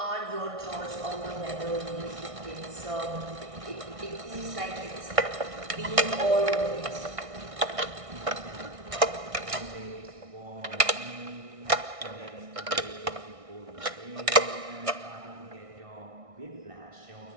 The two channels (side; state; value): left; late; 1.6 ms